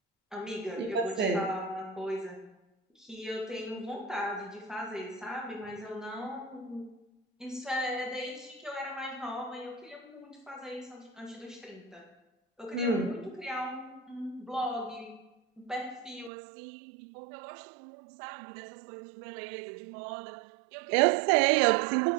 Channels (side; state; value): left; drops out; at 16.3 s